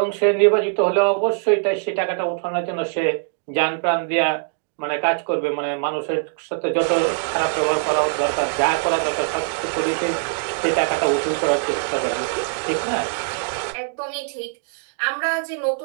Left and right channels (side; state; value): left; silent; digital silence